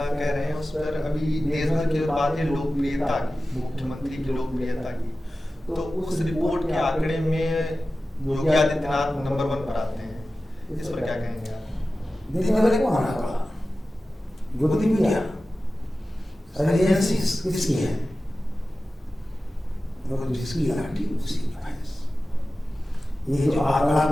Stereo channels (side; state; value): both; normal; correlation 0.95